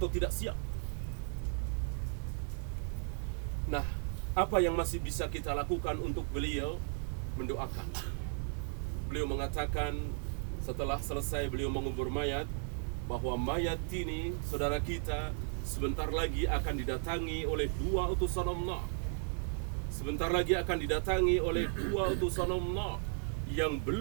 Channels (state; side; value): silent; left; 54 dB below the other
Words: tidak siap. Nah, apa yang masih bisa kita lakukan untuk beliau? Mendoakan. Beliau mengatakan setelah selesai beliau mengubur mayat, bahwa mayat ini, saudara kita, sebentar lagi akan didatangi oleh 2 utusan Allah. Sebentar lagi akan didatangi oleh 2 utusan Allah yang